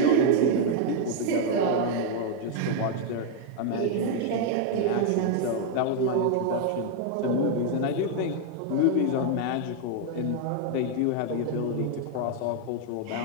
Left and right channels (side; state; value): both; different; correlation 0.00